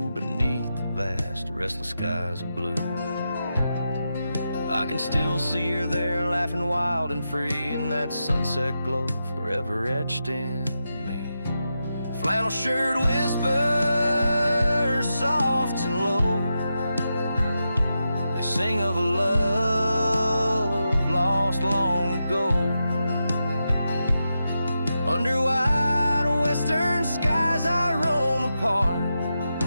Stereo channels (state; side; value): inverted; both; correlation -0.88